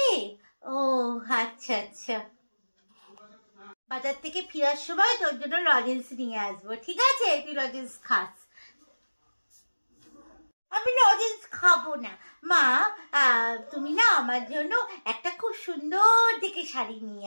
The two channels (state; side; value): inverted; both; correlation -1.00